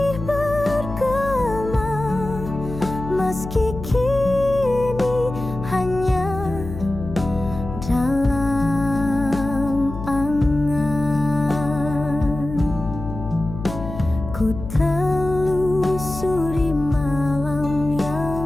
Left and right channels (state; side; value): noise; left; hum, 9 dB below the sound